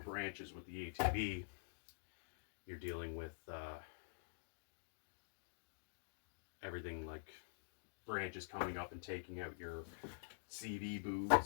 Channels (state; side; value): silent; right; digital silence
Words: with the ATV, you're dealing with everything like branches coming up and taking out your CV